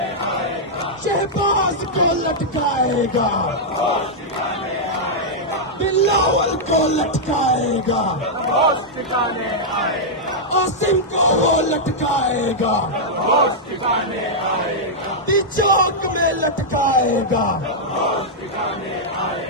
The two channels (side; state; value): both; normal; correlation -0.07